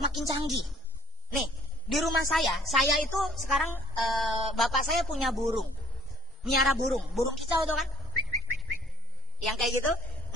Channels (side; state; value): both; normal; correlation 0.49